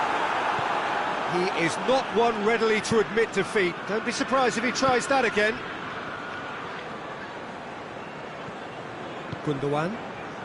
He is not one readily to admit defeat. Don't be surprised if he tries that again. Gundogan.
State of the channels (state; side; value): identical; both; correlation 1.00